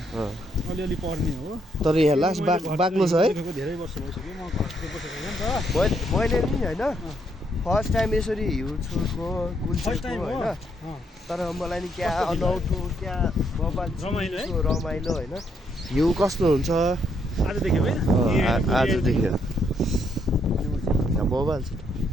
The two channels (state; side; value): normal; both; correlation 0.74